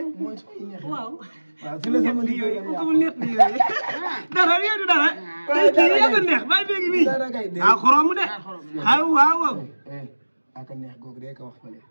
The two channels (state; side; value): inverted; both; correlation -1.00